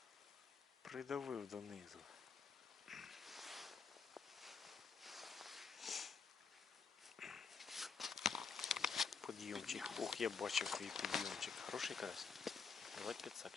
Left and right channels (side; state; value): right; quieter; 5.5 dB